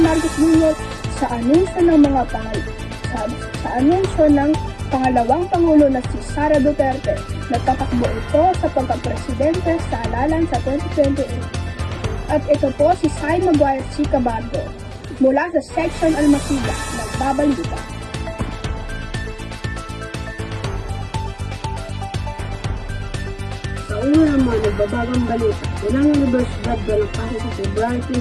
Marcos Jr. sa anunsyo ng mga sa anunsyo ng pangalawang pangulo na si Sara Duterte na tatakbo ito sa pagkapresidente sa halalan sa 2028. At ito po si Sai Maguire Chicabardo mula sa Section Almasida, nagbabalita. Sa ulo ng mga nagbabagang balita, ilang universidad walang pasa sa February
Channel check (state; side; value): identical; both; correlation 1.00